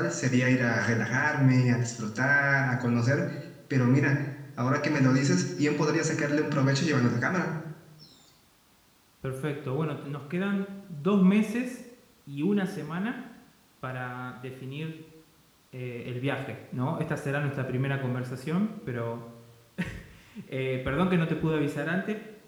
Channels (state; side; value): identical; both; correlation 1.00